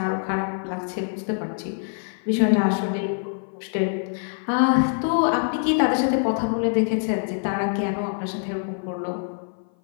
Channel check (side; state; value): right; silent; 56 dB below the other